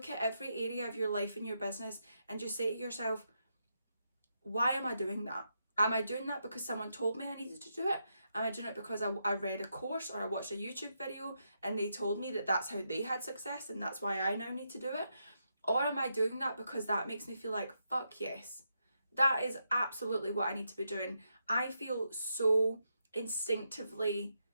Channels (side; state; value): both; inverted; correlation -0.82